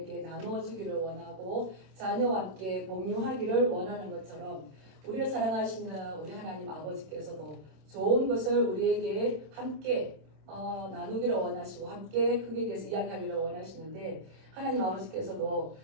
나눠주기를 원하고 자녀와 함께 공유하기를 원하는 것처럼 우리를 사랑하시는 우리 하나님 아버지께서도 좋은 것을 우리에게 함께 나누기를 원하시고 함께 그에 대해서 이야기하기를 원하시는데 하나님 아버지께서도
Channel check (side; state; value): left; late; 26 ms